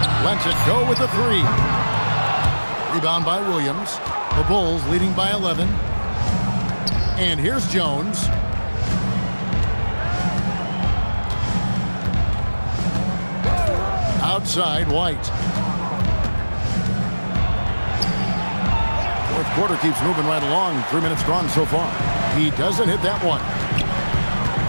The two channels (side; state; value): both; inverted; correlation -1.00